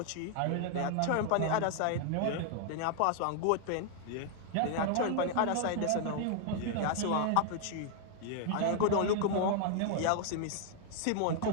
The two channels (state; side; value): different; both; correlation 0.00